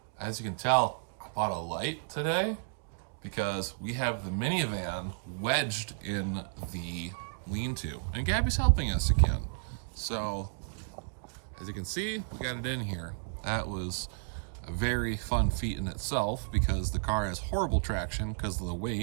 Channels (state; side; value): silent; left; digital silence